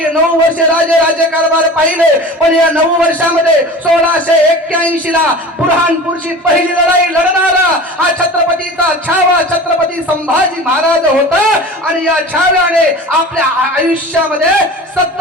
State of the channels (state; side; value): normal; both; correlation 0.36